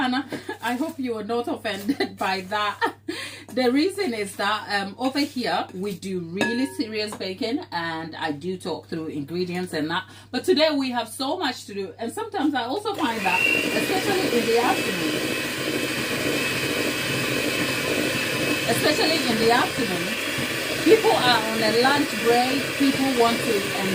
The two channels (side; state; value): both; identical; correlation 1.00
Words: I hope you are not offended by that. The reason is that over here, we do really serious baking, and I do talk through ingredients and that. But today we have so much to do, and sometimes I also find that, especially in the afternoon, people are on a lunch break, people want to